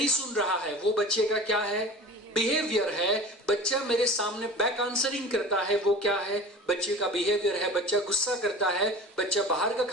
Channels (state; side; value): normal; both; correlation 0.38